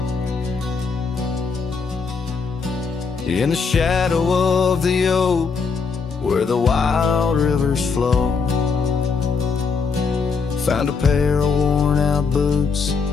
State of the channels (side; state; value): right; quieter; 5.0 dB